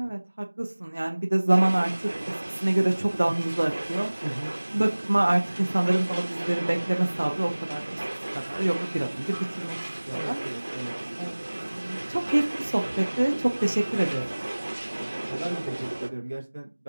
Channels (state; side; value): inverted; both; correlation -1.00